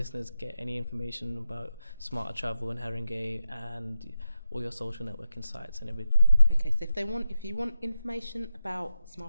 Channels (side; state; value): both; inverted; correlation -0.88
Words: get any information about Smarter Travel in Haringey and all your social networking sites and everything? Okay, so if you want information about